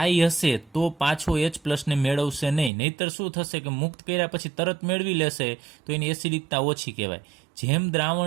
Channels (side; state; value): left; drops out; at 2.7 s